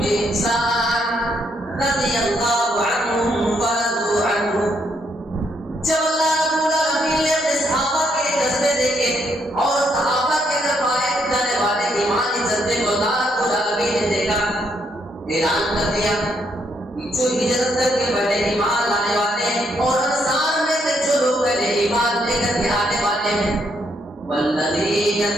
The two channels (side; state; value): both; normal; correlation 0.74